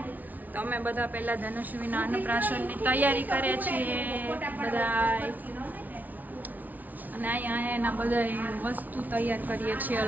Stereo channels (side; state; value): left; late; 0.079 ms